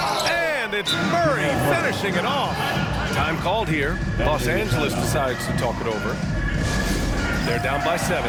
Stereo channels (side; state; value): both; identical; correlation 1.00